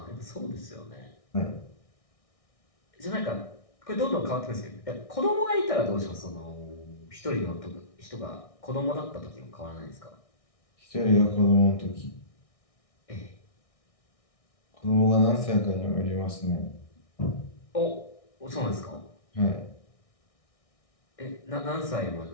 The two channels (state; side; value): late; right; 1.6 ms